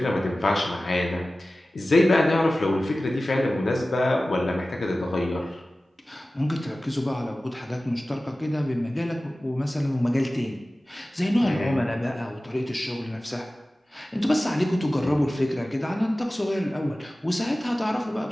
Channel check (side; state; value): both; normal; correlation 0.96